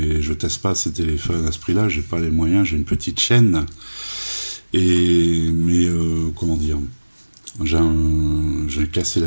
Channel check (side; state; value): both; inverted; correlation -1.00